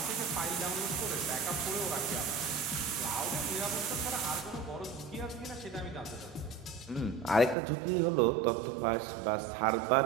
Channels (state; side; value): drops out; left; at 7.6 s